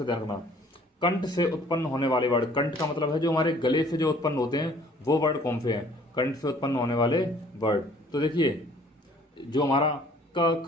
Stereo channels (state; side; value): normal; both; correlation 0.56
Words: ध्यान रखना। कंठ से उत्पन्न होने वाले वर्ड, कंठ का मतलब है जो हमारे गले से जो उत्पन्न होते हैं वो वर्ड कौन से हैं? कंठ से उत्पन्न होने वाले वर्ड। तो देखिए, जो हमारा क,